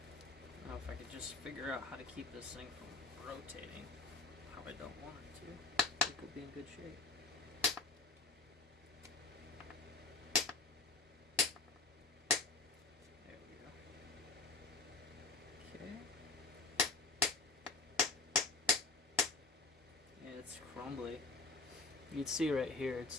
Now if I could just figure out how to keep this thing from rotating how I don't want it to, I think we'll be in good shape. There we go. Okay. It's crumbly. You can see right here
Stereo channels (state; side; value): quieter; right; 4.0 dB